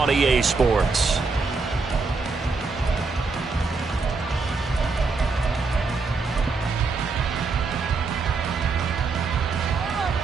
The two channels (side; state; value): left; quieter; 4.2 dB